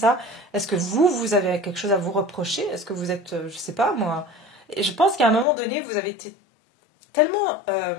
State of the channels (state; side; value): drops out; right; at 5.5 s